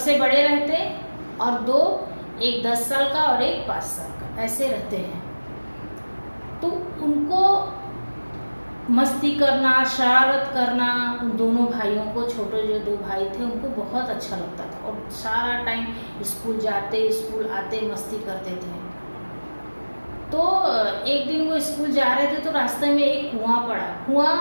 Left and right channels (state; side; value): inverted; both; correlation -1.00